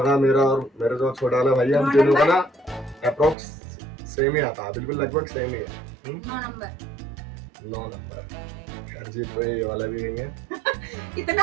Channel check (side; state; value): left; drops out; at 3.4 s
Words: का, मेरा और मेरे जो छोटा वाला भाई है, हम तीनों का ना अप्रोक्स सेम ही आता है, बिल्कुल लगभग सेम ही है। 9 नंबर। खैर जी तो ये वाला भी नहीं है।